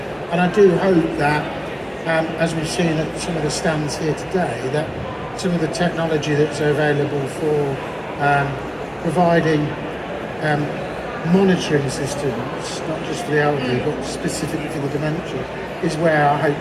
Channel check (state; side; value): identical; both; correlation 1.00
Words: And I do hope that, as we've seen at some of the stands here today, that some of the technology that's available for providing monitoring systems, not just for the elderly, but specifically for the dementia, is where I hope